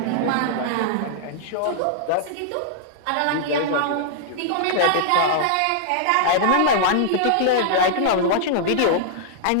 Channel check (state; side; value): different; both; correlation -0.01